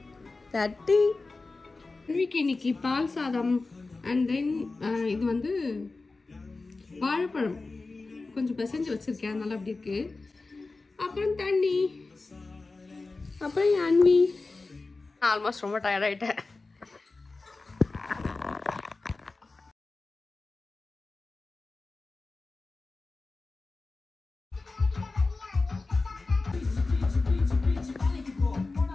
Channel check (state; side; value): quieter; right; 3.6 dB